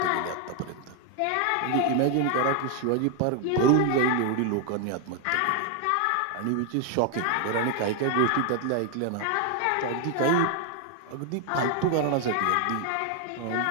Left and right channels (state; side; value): different; both; correlation 0.01